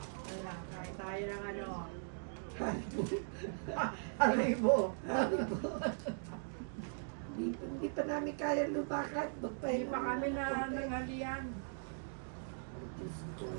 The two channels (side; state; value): left; silent; digital silence